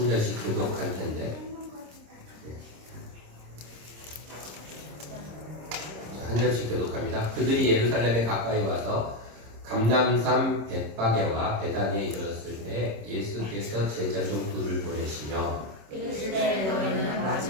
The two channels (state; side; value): late; left; 26 ms